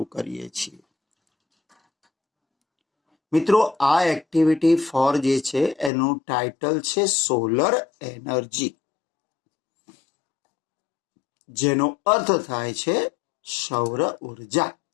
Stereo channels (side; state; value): right; drops out; at 5.9 s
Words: કરીએ છીએ. મિત્રો, આ એક્ટિવિટી 4 જે છે એનું ટાઇટલ છે સોલર એનર્જી, જેનો અર્થ થાય છે સૌર ઉર્જા.